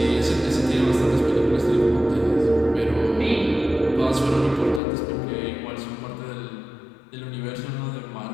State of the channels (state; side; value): drops out; right; at 4.8 s